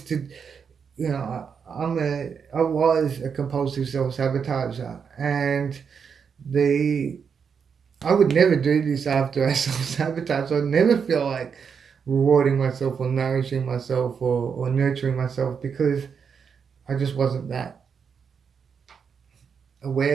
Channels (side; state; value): left; quieter; 6.5 dB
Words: to, I was a compulsive self-sabotager, and I would never do this after I self-sabotage. I'd never feel like rewarding myself or nourishing myself or nurturing myself, because I just wasn't that